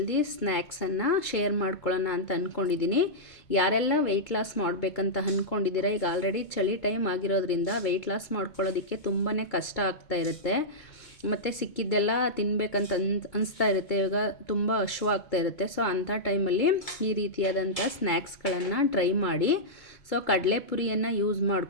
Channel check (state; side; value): late; right; 2.2 ms